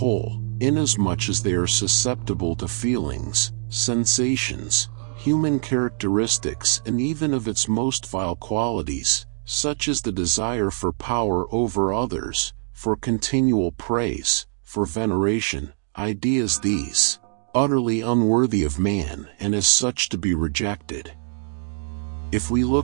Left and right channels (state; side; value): silent; left; digital silence